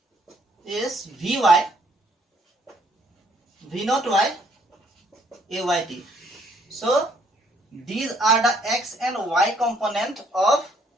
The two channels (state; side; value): normal; both; correlation 0.66